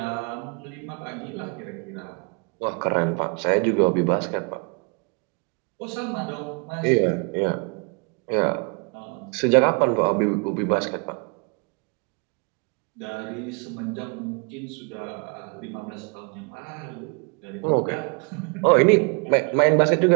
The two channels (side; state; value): left; quieter; 34.4 dB